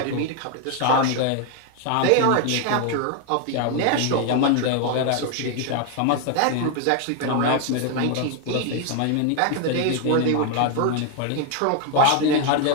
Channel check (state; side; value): different; both; correlation 0.01